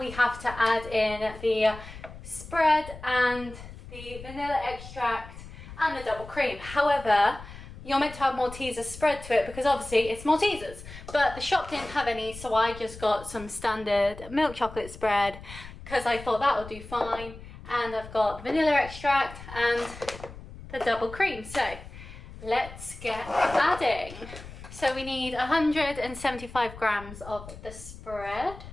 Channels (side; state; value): left; noise; rumble, 15 dB below the sound